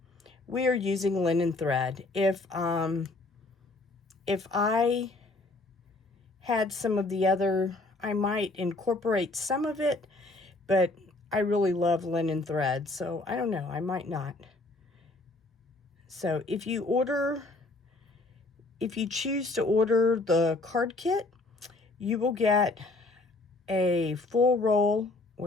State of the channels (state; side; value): quieter; right; 3.1 dB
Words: we are using linen thread. If I had some of the other, I might incorporate some of it, but I really love linen thread, so I don't know, I might not. So if you choose to order the card kit, you will get a full roll.